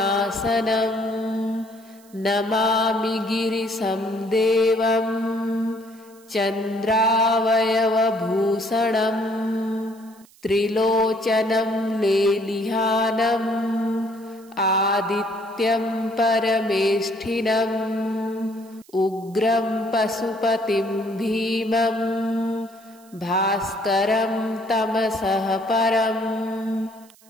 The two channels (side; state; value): right; noise; hiss, 27 dB below the sound